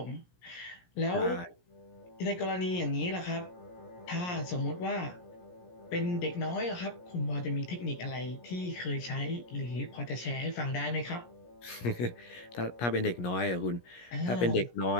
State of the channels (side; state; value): right; late; 17 ms